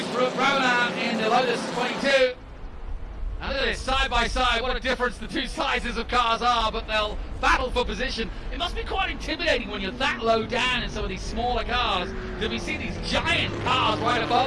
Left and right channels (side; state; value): both; identical; correlation 1.00